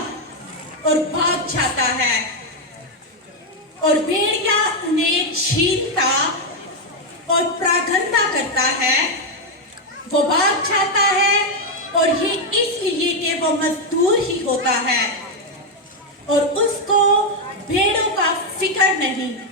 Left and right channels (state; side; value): normal; both; correlation 0.02